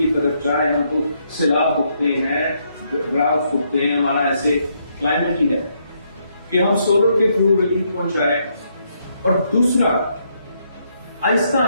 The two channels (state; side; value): inverted; both; correlation -0.75